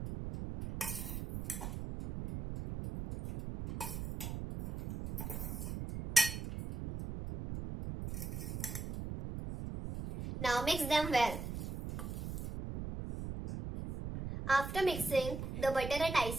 Now mix them well. After mixing the butter and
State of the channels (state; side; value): noise; right; rumble, 6 dB below the sound